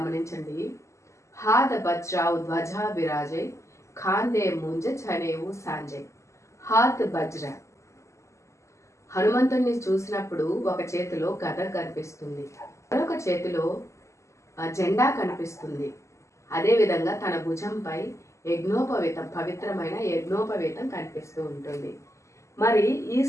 హాద బజ్రావు ధ్వజా విరాజై ఖాందే ముంజ చనేవు సాంజయ్. హాత్ బజ్ర, హనుమంతుడిని చూసినప్పుడు ఒక చేతిలో గద కనిపిస్తుంది, మరొక చేతిలో జెండా కనిపిస్తుంది. అదేవిధంగా తన భుజంపై యజ్ఞోపవీతం, పవిత్రమైన యజ్ఞోపవీతం కనిపిస్తూ ఉంటుంది. మరి ఈ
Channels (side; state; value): right; late; 0.14 ms